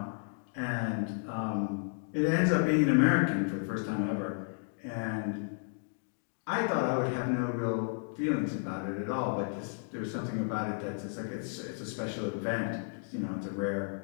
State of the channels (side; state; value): right; silent; 56 dB below the other